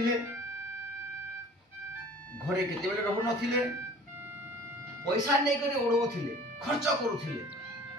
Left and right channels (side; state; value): both; normal; correlation 0.47